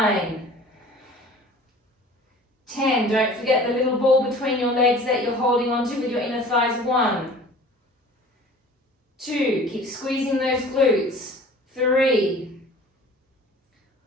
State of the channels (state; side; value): normal; both; correlation 0.45